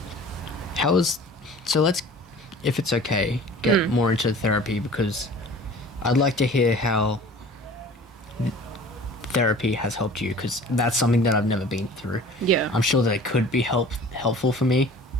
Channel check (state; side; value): normal; both; correlation 0.45